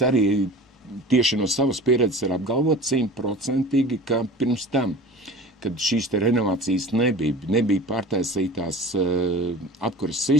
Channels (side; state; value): both; normal; correlation 0.39